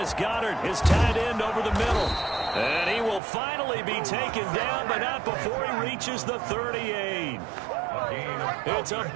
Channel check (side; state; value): left; drops out; at 3.2 s